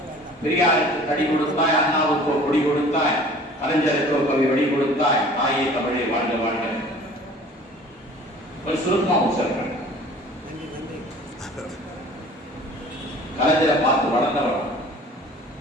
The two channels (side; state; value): both; normal; correlation 0.47